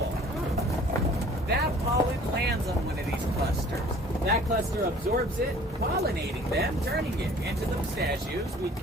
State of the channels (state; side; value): normal; both; correlation 0.51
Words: That pollen lands on one of these clusters. That cluster absorbs it, pollinating them, turning it into the pistachios we